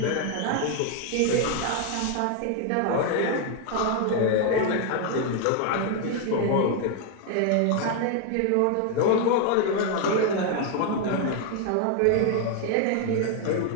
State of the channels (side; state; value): both; different; correlation 0.01